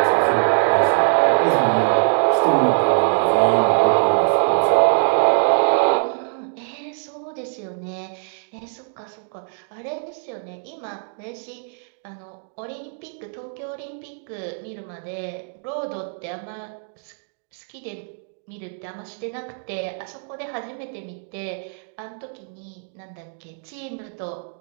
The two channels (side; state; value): left; silent; digital silence